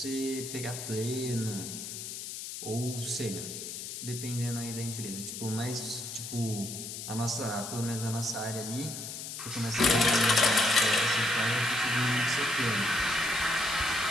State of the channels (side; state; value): left; noise; hiss, 8 dB below the sound